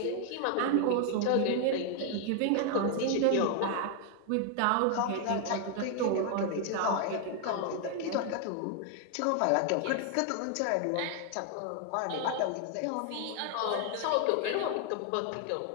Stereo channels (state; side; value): different; both; correlation 0.00